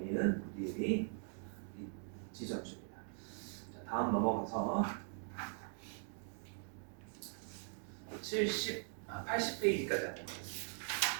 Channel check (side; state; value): left; silent; 50 dB below the other